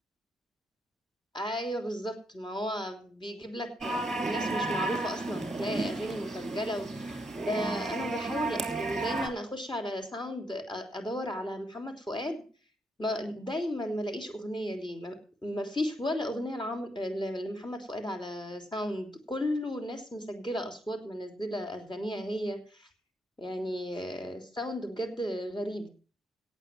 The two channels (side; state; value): both; normal; correlation 0.77